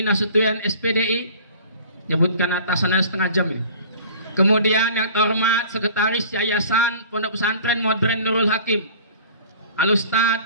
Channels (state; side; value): inverted; both; correlation -0.45